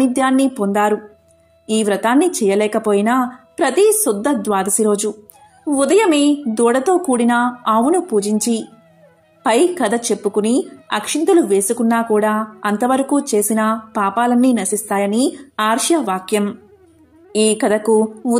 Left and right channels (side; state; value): both; identical; correlation 1.00